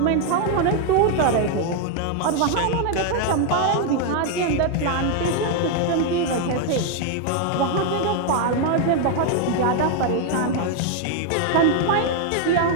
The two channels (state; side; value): different; both; correlation 0.00